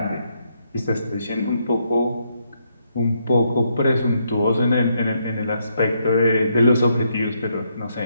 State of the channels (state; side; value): inverted; both; correlation -0.76